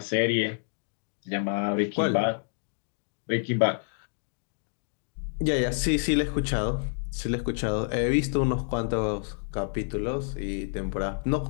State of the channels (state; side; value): silent; right; digital silence